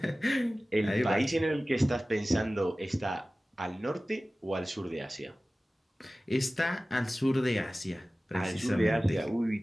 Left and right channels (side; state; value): both; normal; correlation 0.97